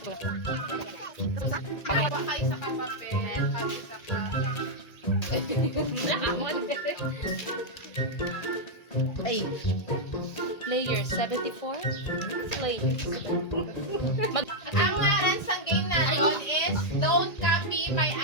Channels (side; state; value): right; late; 1.8 ms